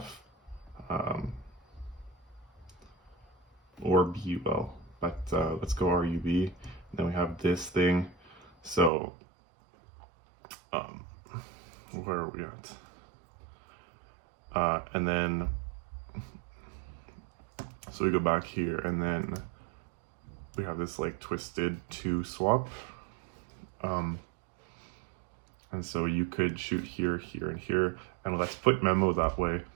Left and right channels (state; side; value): drops out; left; at 8.9 s